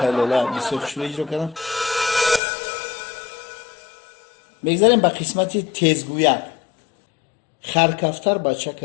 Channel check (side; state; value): right; drops out; at 2.4 s